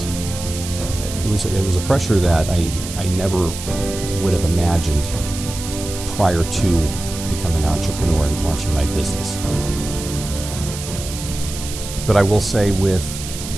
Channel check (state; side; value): noise; right; hiss, 10 dB below the sound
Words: a pressure that I never would have imagined prior to becoming an entrepreneur and launching my business. But I will say, with